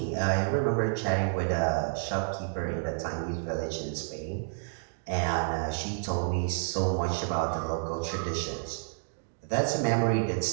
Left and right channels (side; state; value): left; silent; digital silence